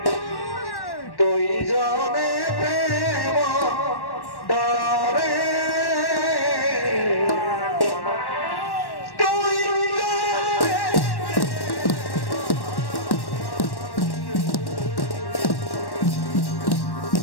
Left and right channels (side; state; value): right; late; 1.1 ms